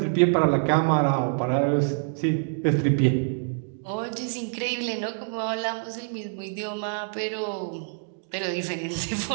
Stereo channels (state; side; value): silent; left; digital silence